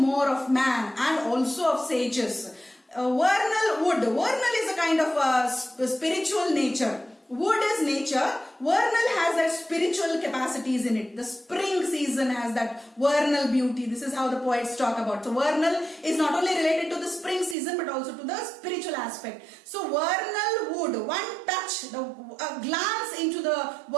of man and also of sages. Vernal wood. Vernal is a kind of spiritual nature. Wood is nature. Vernal has that spiritual capacities in it. The spring season has that vernal beauty. This is how the poets talk about. So vernal is not only related to the spring season but also to the spiritual aspect. So vernal wood, one touch, a glance into the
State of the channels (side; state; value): left; drops out; at 17.6 s